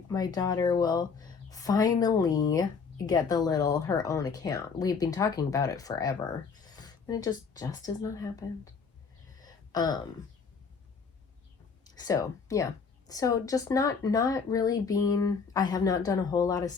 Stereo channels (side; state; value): right; quieter; 5.5 dB